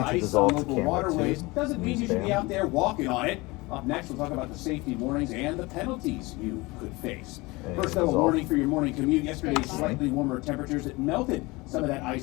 ice on local waterways doesn't mean you should be out there walking on it. Up next, we'll talk about the safety warnings and the penalties you could face. First, though, a warning for your morning commute. Yesterday's slightly warmer temperatures that melted some of that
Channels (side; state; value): right; quieter; 23.3 dB